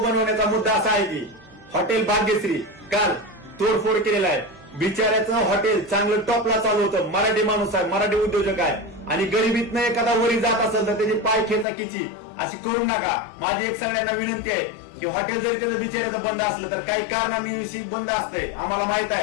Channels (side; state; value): right; drops out; at 11.7 s